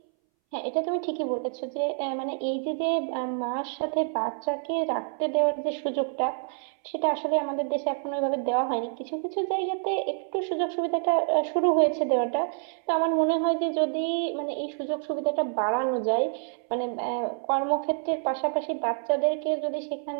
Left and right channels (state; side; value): silent; left; 60 dB below the other